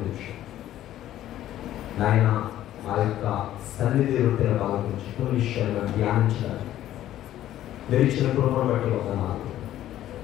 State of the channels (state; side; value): quieter; right; 12.9 dB